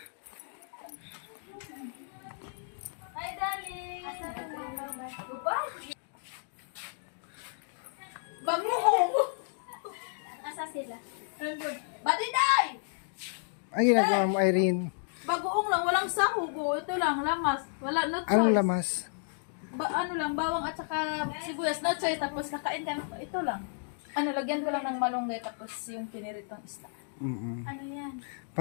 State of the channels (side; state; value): right; silent; digital silence